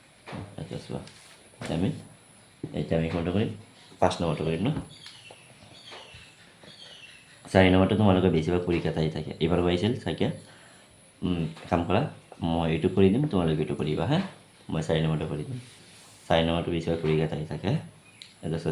এটা চোৱা এতিয়া আমি কোনটো কৰিম 5 নম্বৰটো কৰিম ন 4 নম্বৰটো তোমালোকে বেছিভাগ পৰীক্ষাত আহি থাকে এইবাৰ আহিছিল চাগে কাম কৰা মই এইটো কৰি দিম তোমালোকে এইটো কৰিবা হা মই 4 নম্বৰটো কৰি দিম 4 নম্বৰটো বেছিভাগ পৰীক্ষাত আহি থাকে এটা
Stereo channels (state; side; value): identical; both; correlation 1.00